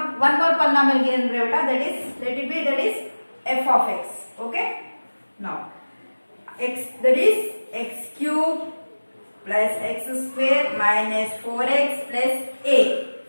one more polynomial given brevita, that is, let it be, that is f of x. Okay. Now x, that is x cube plus x square minus 4x plus a.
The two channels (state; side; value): inverted; both; correlation -1.00